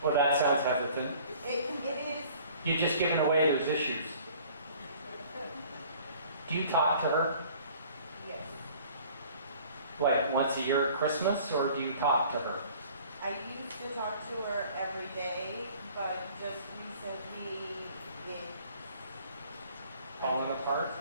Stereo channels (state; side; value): inverted; both; correlation -0.52